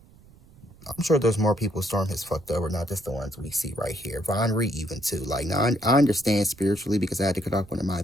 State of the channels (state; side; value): noise; right; rumble, 25 dB below the sound